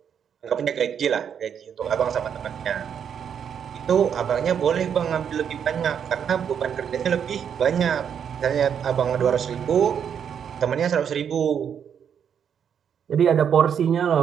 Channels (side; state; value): left; quieter; 8.0 dB